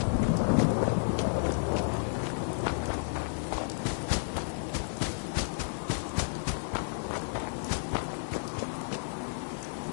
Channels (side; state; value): right; silent; digital silence